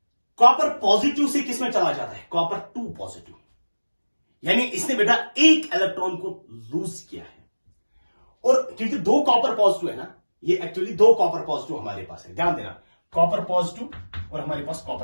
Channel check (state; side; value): inverted; both; correlation -1.00